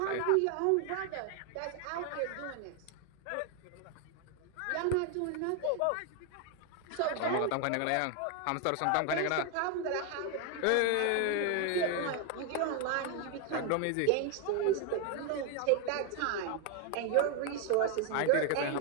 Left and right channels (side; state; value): both; different; correlation 0.01